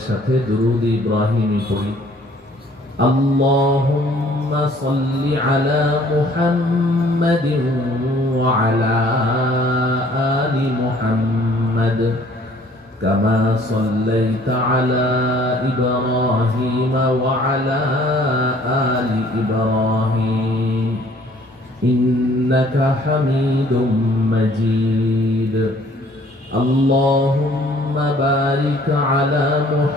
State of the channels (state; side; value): normal; both; correlation 0.57